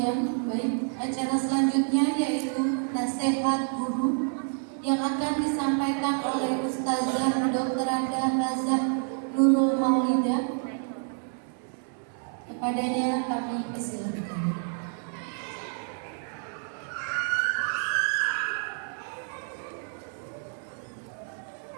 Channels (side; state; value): left; silent; 59 dB below the other